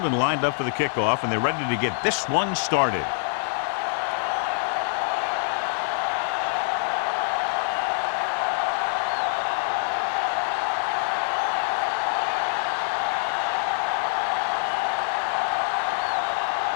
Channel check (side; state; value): right; silent; digital silence